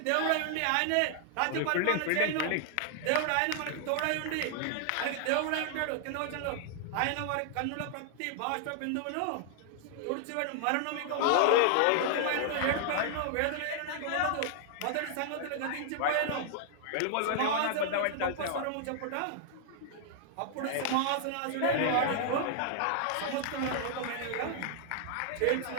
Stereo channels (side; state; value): both; different; correlation -0.01